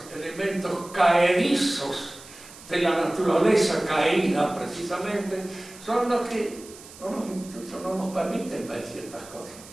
elementos caedizos de la naturaleza caída, precisamente, son los que incluso no nos permiten ver ciertas cosas.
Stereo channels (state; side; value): noise; right; hiss, 19 dB below the sound